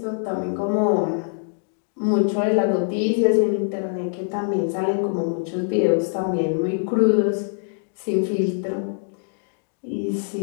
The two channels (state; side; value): silent; right; digital silence